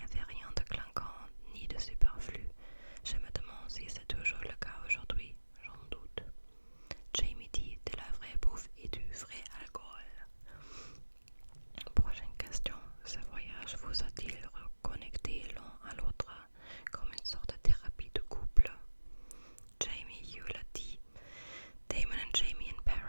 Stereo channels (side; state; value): both; inverted; correlation -1.00